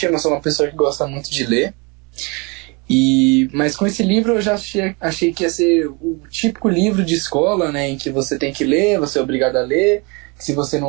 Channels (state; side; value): quieter; left; 29.6 dB